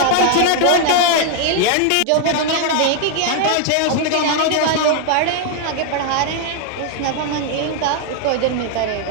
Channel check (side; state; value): both; different; correlation 0.00